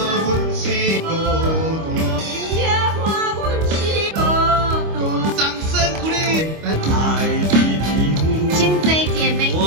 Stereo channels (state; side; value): late; left; 25 ms